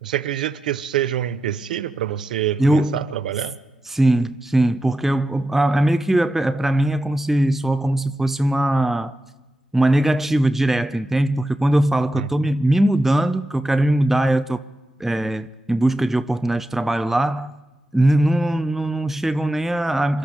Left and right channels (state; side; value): normal; both; correlation 0.89